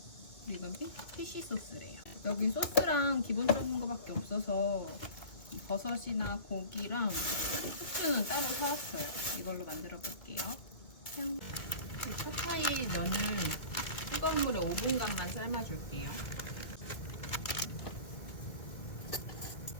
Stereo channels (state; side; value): late; right; 2.2 ms